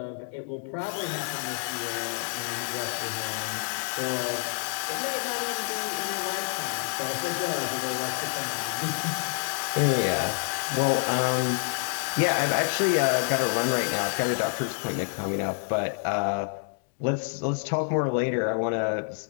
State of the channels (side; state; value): right; silent; digital silence